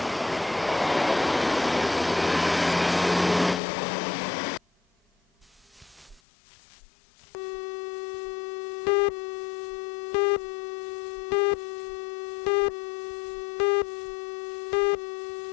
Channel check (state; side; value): drops out; right; at 6.2 s